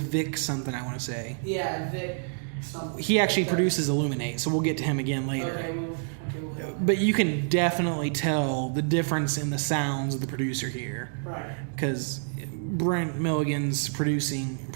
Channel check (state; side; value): silent; left; digital silence